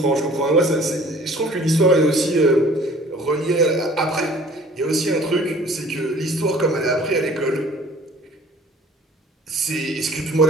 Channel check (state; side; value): normal; both; correlation 0.51